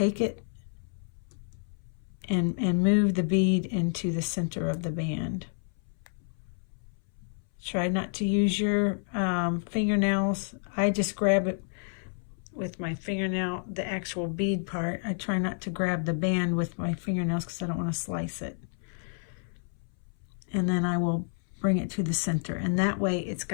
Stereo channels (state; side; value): silent; right; 58 dB below the other